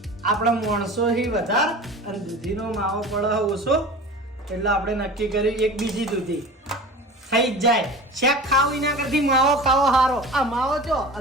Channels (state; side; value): normal; both; correlation 0.36